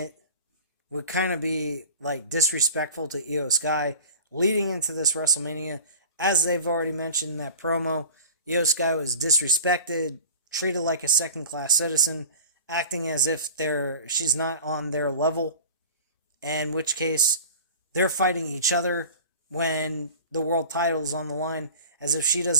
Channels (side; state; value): both; inverted; correlation -0.39